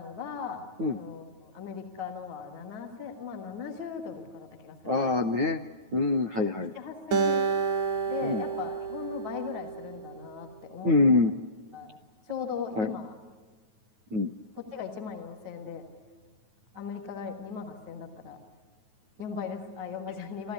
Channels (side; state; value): left; late; 9.3 ms